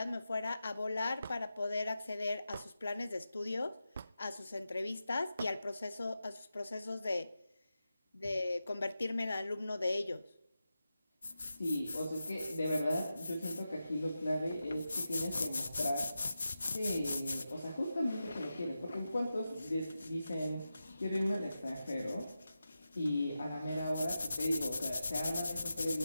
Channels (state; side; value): inverted; both; correlation -0.91